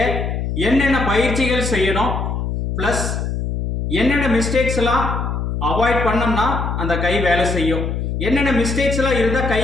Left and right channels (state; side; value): noise; left; hum, 2 dB below the sound